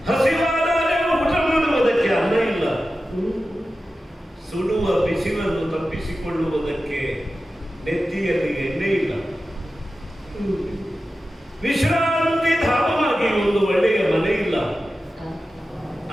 ಹಸಿವಾದಾಗ ಊಟ ಮಾಡುವುದಕ್ಕೆ ಅನ್ನ ಇಲ್ಲ, ಸುಡುವ ಬಿಸಿಲನ್ನು ತಪ್ಪಿಸಿಕೊಳ್ಳುವುದಕ್ಕೆ ನೆತ್ತಿಯಲ್ಲಿ ಎಣ್ಣೆ ಇಲ್ಲ, ವಿಶ್ರಾಂತಿ ಧಾಮವಾಗಿ ಒಂದು ಒಳ್ಳೆಯ ಮನೆ ಇಲ್ಲ.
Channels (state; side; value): normal; both; correlation 0.93